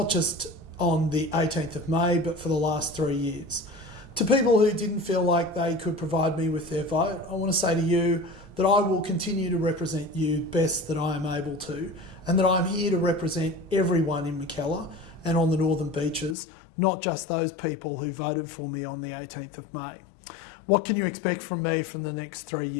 just on the 18th of May, but for the last 3 years. To people who didn't feel like they could provide me with their vote, I want to say to you that I will continue to represent you best that I am able to, and that I'm here to represent everyone in Mackellar and on the Northern Beaches, not just those people who voted for me on the 18th of May. What can you expect from me from the next 3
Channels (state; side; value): drops out; right; at 16.4 s